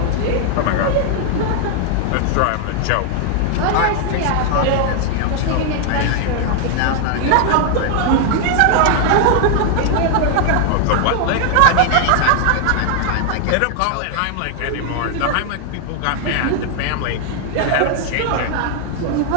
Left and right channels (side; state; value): both; different; correlation 0.00